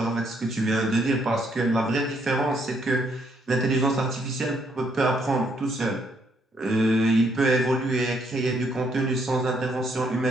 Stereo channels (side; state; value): both; normal; correlation 0.71